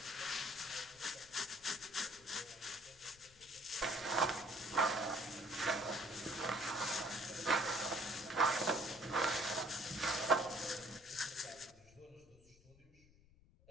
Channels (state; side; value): noise; left; rumble, 26 dB below the sound